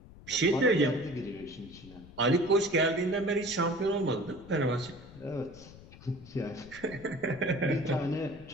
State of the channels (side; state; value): left; noise; rumble, 19 dB below the sound